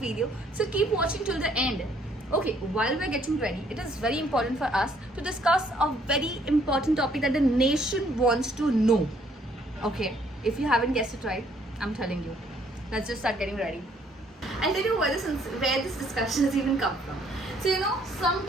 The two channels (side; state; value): both; normal; correlation 0.65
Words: So keep watching till the end. Okay, while we're getting ready, it is very important for us to discuss a very important topic that the nation wants to know. Okay, if you haven't guessed it right, I'm telling you. Let's just start getting ready. I'll tell you where this discussion has even come from. So you know,